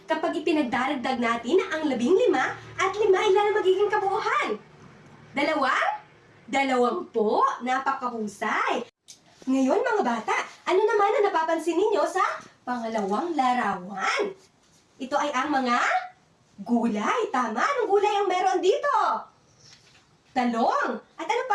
kapag ipinagdaragdag natin ang 15 at 5, ilan ang magiging kabuuhan? 2? 20. Napakahusay. Ngayon mga bata, ano naman ang napapansin ninyo sa pangalawang larawan? Ito ay ang mga gulay. Tama, anong gulay ang meron dito? Talong. At ano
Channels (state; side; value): identical; both; correlation 1.00